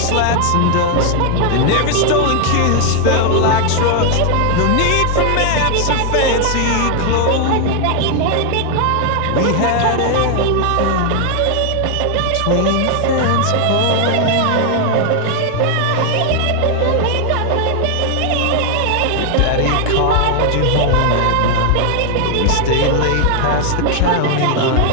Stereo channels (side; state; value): both; different; correlation 0.00